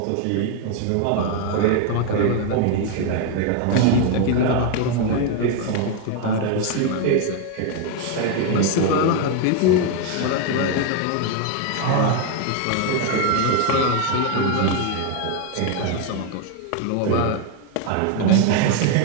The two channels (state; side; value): different; both; correlation 0.01